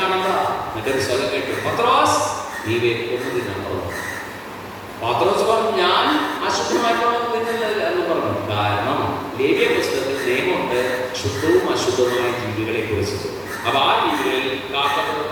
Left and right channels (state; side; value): identical; both; correlation 1.00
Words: കാണുക. മറ്റൊരു സ്ഥലം കേട്ടു, പത്രോസ് നീ വേക്കൊന്നും പത്രോസ് പറഞ്ഞു, ഞാൻ അശുദ്ധമായിട്ടുള്ള തിന്നില്ല എന്ന് പറഞ്ഞു. കാരണം ലേവ്യ പുസ്തകത്തിൽ നിയമമുണ്ട് ശുദ്ധവും അശുദ്ധവുമായ ജീവികളെ കുറിച്ച്. അപ്പൊ ആ ജീവികളിൽ